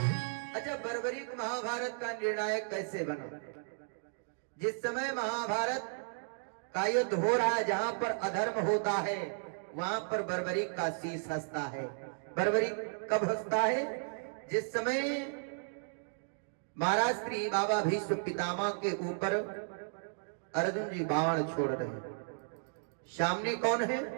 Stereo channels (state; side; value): silent; left; digital silence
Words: अच्छा, बर्बरीक महाभारत का निर्णायक कैसे बना? जिस समय महाभारत का युद्ध हो रहा है, जहां पर अधर्म होता है वहां पर बर्बरीक का शीश हंसता है। बर्बरीक कब हंसता है? जिस समय महाराज श्री बाबा भीष्म पितामह के ऊपर अर्जुन जी बाण छोड़ रहे हैं। सामने कौन है?